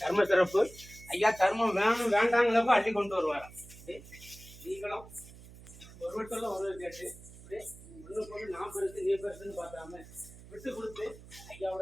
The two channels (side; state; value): right; noise; hum, 18 dB below the sound